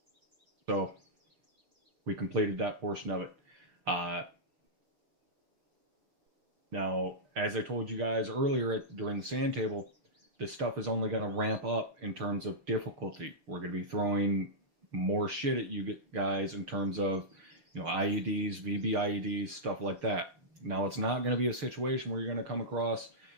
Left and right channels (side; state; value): left; late; 6.7 ms